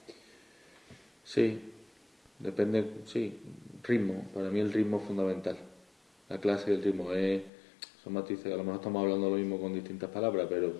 Sí, depende, sí, ritmo. Para mí el ritmo es fundamental. La clase y el ritmo son matices, a lo mejor estamos hablando lo mismo con distintas palabras, pero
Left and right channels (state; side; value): drops out; right; at 7.5 s